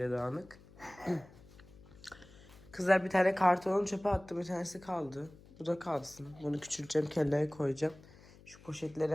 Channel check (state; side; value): noise; left; hum, 22 dB below the sound